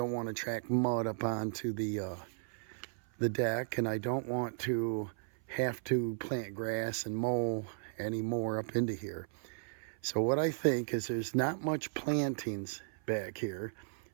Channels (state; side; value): silent; left; 54 dB below the other